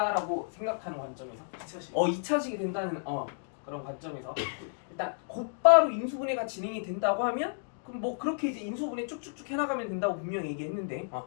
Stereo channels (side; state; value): right; silent; digital silence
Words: 생각하는 관점에서 2차식. 2차식이 된다는 그런 관점에서 일단 곧바로 인수분해가 진행이 된다고 하면 그럼 뭐 그렇게 이제 인수분해 쭉쭉쭉 해나가면 된다고 분명히 얘기했는데